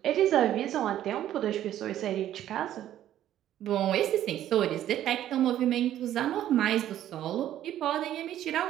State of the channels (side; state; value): left; quieter; 12.0 dB